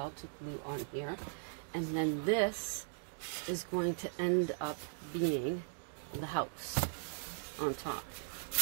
to glue on here. And then this is going to end up being the house. on top.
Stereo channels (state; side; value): silent; left; digital silence